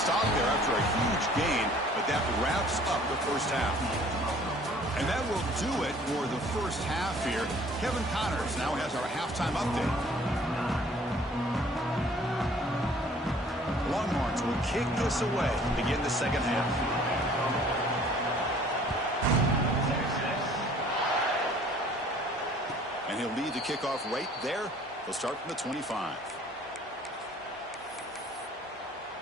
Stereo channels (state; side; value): normal; both; correlation 0.54